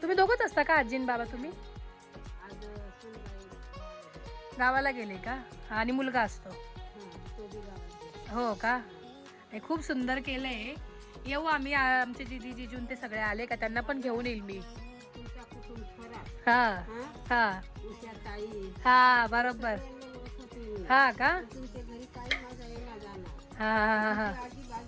तुम्ही दोघंच असता का, आजी आणि बाबा? तुम्ही गावाला गेले का? आणि मुलगा असतो? हो का. खूप सुंदर केलंय. येऊ आम्ही, आमचे दीदी जिजून ते सगळे आले का त्यांना पण घेऊन येईल मी. हा हा हा बरोबर. हा का. हा हा हा.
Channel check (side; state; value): both; identical; correlation 1.00